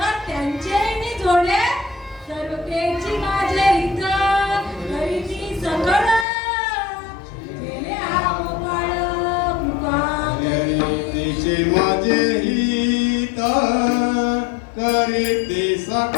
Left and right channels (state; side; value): drops out; right; at 6.2 s